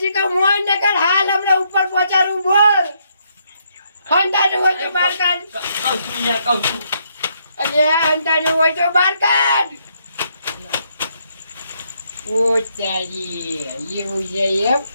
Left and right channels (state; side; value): inverted; both; correlation -0.74